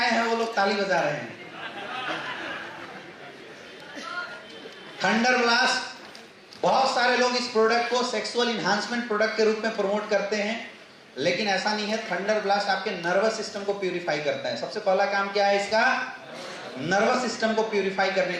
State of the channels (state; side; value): identical; both; correlation 1.00